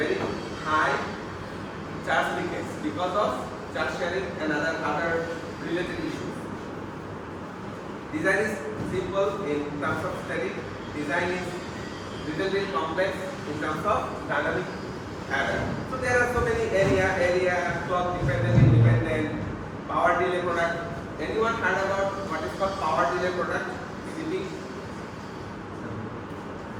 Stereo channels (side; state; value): both; identical; correlation 1.00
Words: high charge leakage because of charge sharing and other related issues. Design is simple in terms of static. Design is little bit complex in terms of dynamic adder. So there are so many area, clock dependent, independent, power delay product. Anyone heard about what is called power delay product? CP?